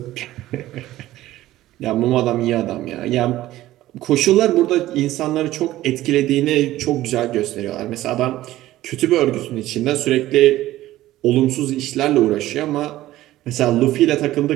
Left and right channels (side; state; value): left; quieter; 15.3 dB